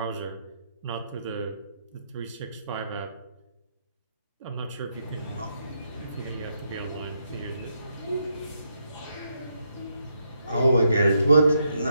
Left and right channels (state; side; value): inverted; both; correlation -0.79